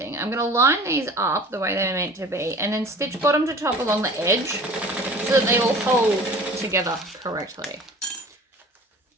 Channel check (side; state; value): both; normal; correlation 0.43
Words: I'm going to line these up the way they're meant to be and then stitch bottom to top along the edge so that they all hold together correctly.